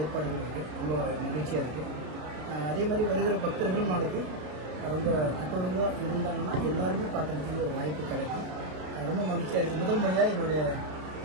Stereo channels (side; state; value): left; late; 33 ms